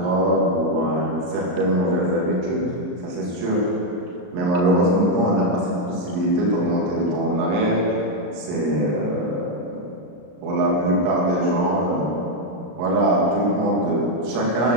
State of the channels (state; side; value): late; left; 34 ms